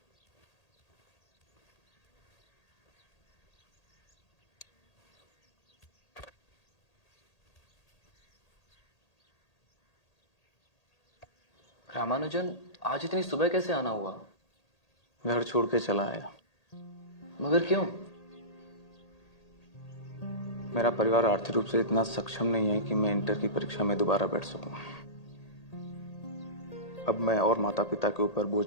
रामानुजन, आज इतनी सुबह कैसे आना हुआ? घर छोड़ के चला आया। मगर क्यों? मेरा परिवार आर्थिक रूप से इतना सक्षम नहीं है कि मैं इंटर की परीक्षा में दोबारा बैठ सकूं। अब मैं और माता पिता के ऊपर बोझ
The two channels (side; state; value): right; late; 1.8 ms